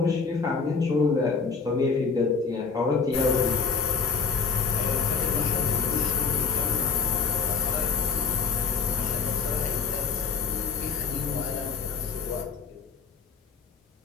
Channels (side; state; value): right; quieter; 5.4 dB